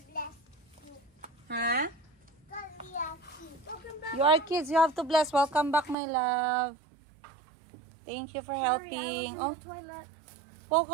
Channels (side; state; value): left; drops out; at 6.0 s